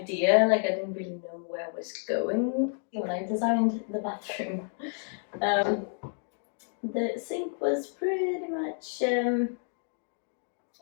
like I didn't really know where I was going when I designed the bathroom. The sink was pretty much a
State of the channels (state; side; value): silent; right; 58 dB below the other